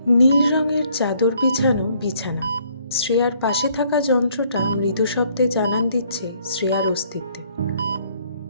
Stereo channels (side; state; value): both; inverted; correlation -0.65